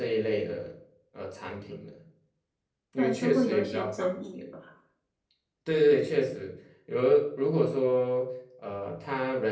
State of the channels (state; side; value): identical; both; correlation 1.00